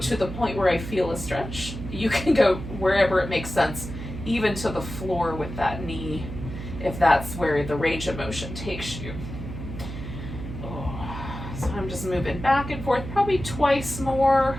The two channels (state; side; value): noise; right; hum, 9 dB below the sound